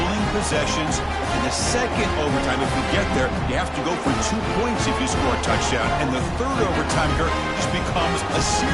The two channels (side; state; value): both; identical; correlation 1.00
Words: possessions. In the second overtime, if we get there, you have to go for 2 points if you score a touchdown. And the third overtime here just becomes a